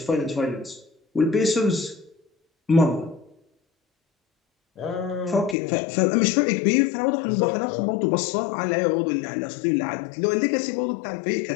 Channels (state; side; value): drops out; right; at 5.6 s